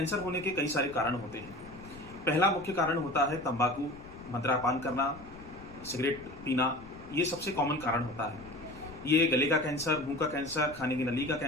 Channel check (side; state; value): left; noise; rumble, 18 dB below the sound